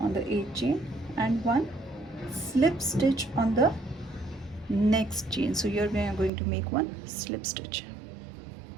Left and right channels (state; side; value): drops out; left; at 6.3 s